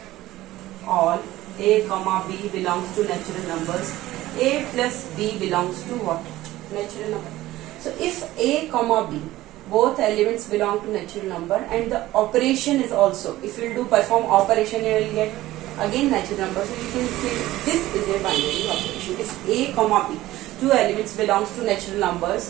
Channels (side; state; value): left; quieter; 16.2 dB